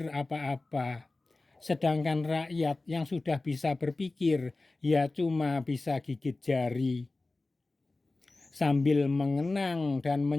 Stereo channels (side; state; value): right; quieter; 3.2 dB